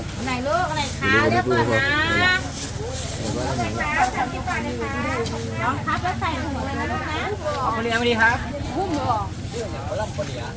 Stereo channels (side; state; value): both; identical; correlation 1.00